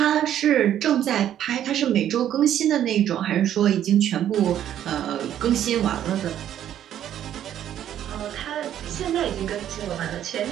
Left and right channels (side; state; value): left; quieter; 10.8 dB